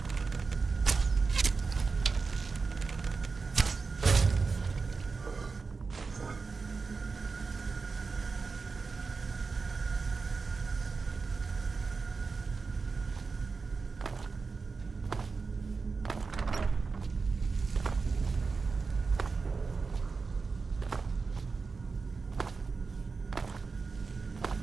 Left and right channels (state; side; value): quieter; left; 4.5 dB